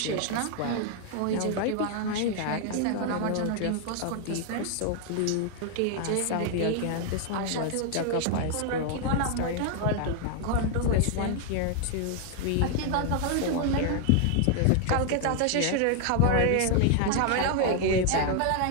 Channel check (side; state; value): both; different; correlation 0.00